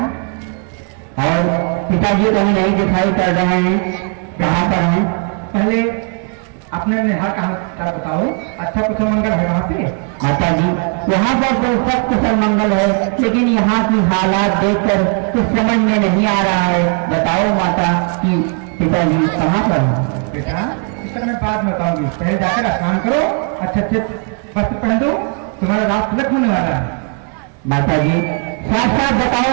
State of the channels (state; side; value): quieter; left; 39.3 dB